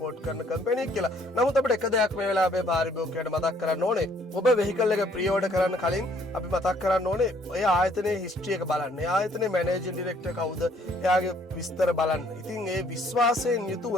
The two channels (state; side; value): normal; both; correlation 0.63